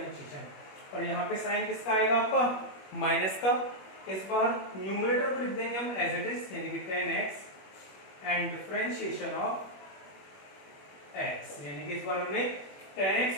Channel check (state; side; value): late; right; 21 ms